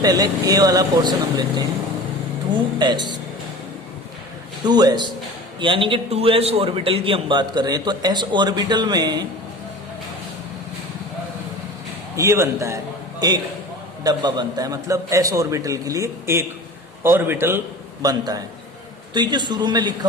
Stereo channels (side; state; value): both; normal; correlation 0.37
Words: a वाला पोर्शन हम लेते हैं 2s यानी कि 2s ऑर्बिटल की हम बात कर रहे हैं। तो s ऑर्बिटल में ये बनता है, एक डब्बा बनता है, मतलब s ऑर्बिटल के लिए एक ऑर्बिटल बनता है। तो ये जो शुरू में लिखा